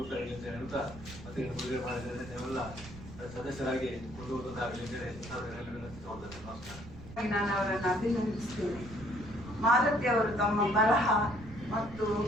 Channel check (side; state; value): right; noise; rumble, 16 dB below the sound